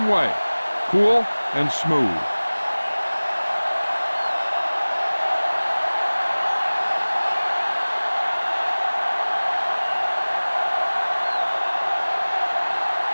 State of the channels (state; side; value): inverted; both; correlation -1.00